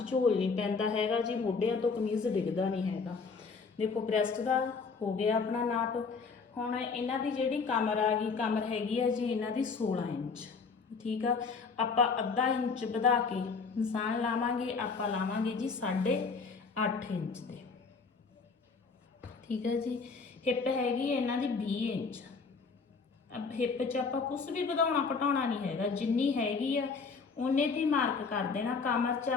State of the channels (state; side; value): quieter; right; 4.9 dB